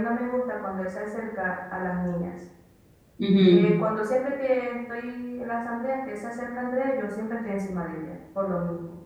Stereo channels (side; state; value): both; identical; correlation 1.00